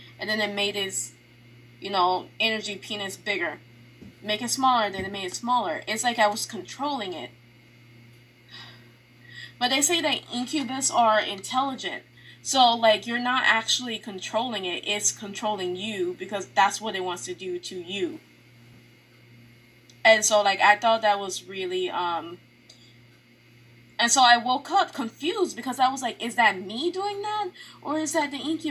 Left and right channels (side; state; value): both; identical; correlation 1.00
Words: And then it made its, energy penis bigger. Make it smaller. Then it made it smaller. It's like I was controlling it. But they say that incubus are intelligent. So, like, you're not actually controlling it. It's controlling you, because that's what it wants to do to you. And so, like, I thought that was really, And so I woke up confused, because I was like, is that me doing that? Or is that the